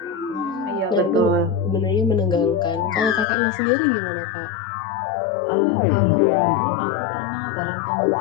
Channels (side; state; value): right; drops out; at 3.2 s